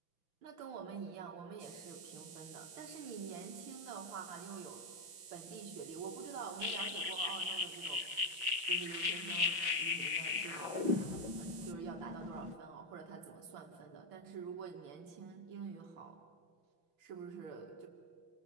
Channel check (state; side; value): late; left; 5.9 ms